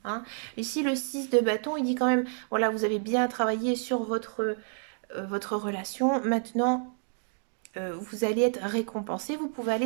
hein. Ici le 6 de bâton, il dit quand même, voilà, vous avez bien travaillé sur votre relation. Maintenant, vous allez être récompensé, vous pouvez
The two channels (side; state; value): left; silent; 58 dB below the other